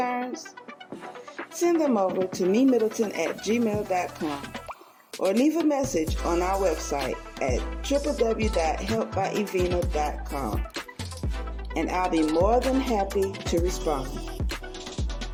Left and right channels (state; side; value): identical; both; correlation 1.00